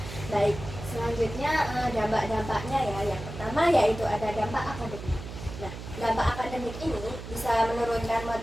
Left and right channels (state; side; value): noise; right; hum, 10 dB below the sound